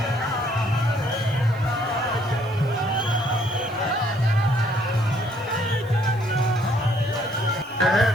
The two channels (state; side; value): noise; right; hiss, 28 dB below the sound